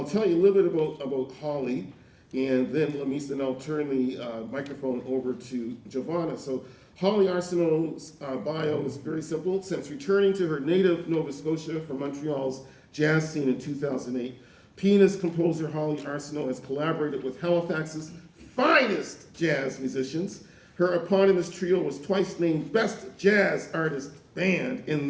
tell you a little bit about Holly, and then Lamis, and I'll turn the microphone over to Giovanna. So Holly Arsenault's bio is very simple. Since returning to her native Nova Scotia from Montreal's jazz scene in 2008, pianist composer Holly Arsenault has collaborated with Halifax's finest jazz musicians. Her eponymous trio was twice named Best Jazz Artist Band in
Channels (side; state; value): both; identical; correlation 1.00